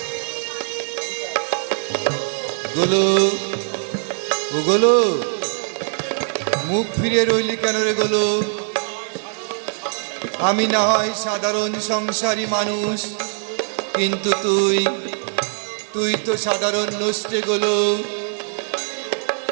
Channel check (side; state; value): left; silent; digital silence